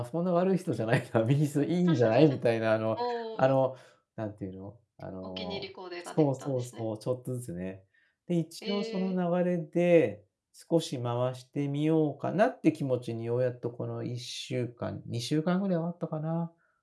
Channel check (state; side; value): identical; both; correlation 1.00